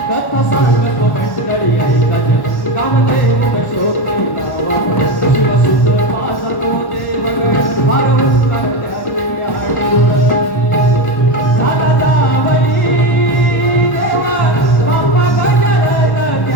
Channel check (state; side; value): late; right; 1.1 ms